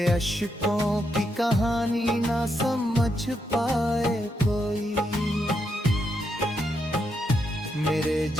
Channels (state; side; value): normal; both; correlation 0.81